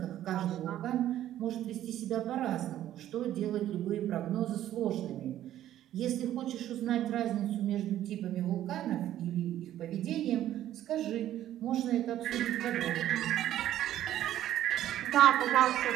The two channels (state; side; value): quieter; left; 12.4 dB